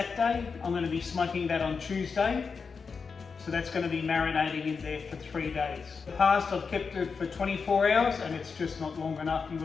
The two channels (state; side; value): quieter; right; 5.3 dB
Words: I'm going to be smoking that on Tuesday. So that's going to be marinating in there for 3 days. In the past I've kept it for 24 hours and it's just not long enough.